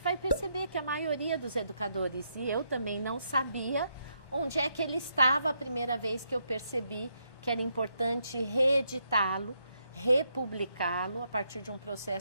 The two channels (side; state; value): right; late; 1.1 ms